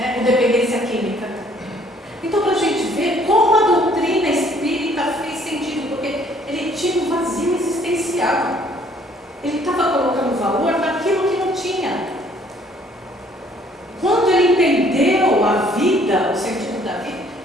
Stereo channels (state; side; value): normal; both; correlation 0.61